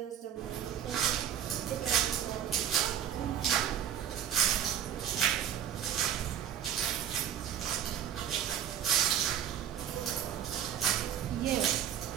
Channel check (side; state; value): left; quieter; 9.6 dB